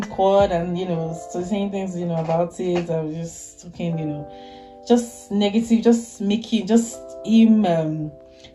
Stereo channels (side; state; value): both; identical; correlation 1.00